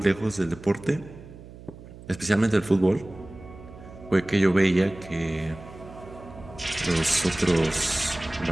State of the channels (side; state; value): right; noise; hum, 17 dB below the sound